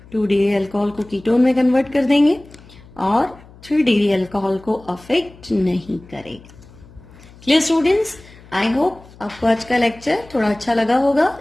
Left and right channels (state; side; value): noise; left; hum, 23 dB below the sound